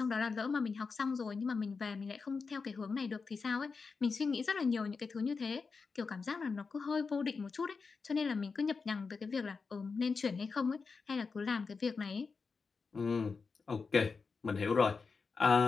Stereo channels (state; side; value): quieter; right; 4.8 dB